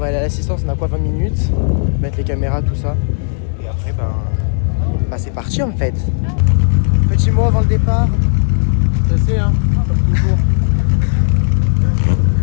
aller à l'assistance, on a quoi, 20 minutes. Mettre les caméras, tout ça. Et après, bah c'est parti en fait. Petit mot avant le départ. Stressé, hein, comme toujours.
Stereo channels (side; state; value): right; silent; digital silence